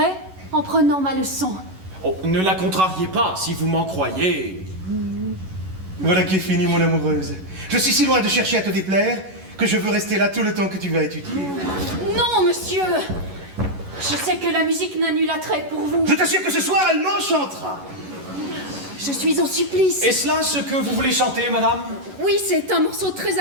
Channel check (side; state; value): left; late; 11 ms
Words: en prenant ma leçon. Oh, ne la contrariez pas, si vous m'en croyez. Voilà qui est fini, mon amoureuse. Je suis si loin de chercher à te déplaire que je veux rester là tout le temps que tu vas étudier. Non, monsieur. Je sais que la musique n'a nul attrait pour vous. Je t'assure que ce soir, elle m'enchantera. Je suis en supplice. Est-ce là ce que vous voulez chanter, madame? Oui, c'est un morceau très